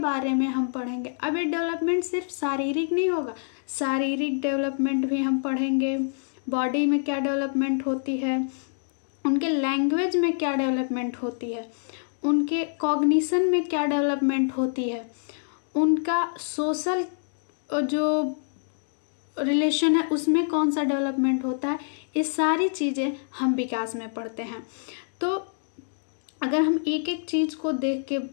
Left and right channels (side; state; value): right; silent; digital silence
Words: में हम पढ़ेंगे। अब ये डेवलपमेंट सिर्फ शारीरिक नहीं होगा, शारीरिक डेवलपमेंट भी हम पढ़ेंगे। बॉडी में क्या डेवलपमेंट होती है, उनके लैंग्वेज में क्या डेवलपमेंट होती है, उनके कॉग्निशन में क्या डेवलपमेंट होती है, उनका सोशल जो रिलेशन है उसमें कौन सा डेवलपमेंट होता है। ये सारी चीज़ें हम विकास में पढ़ते हैं। तो अगर हम एक एक चीज़ को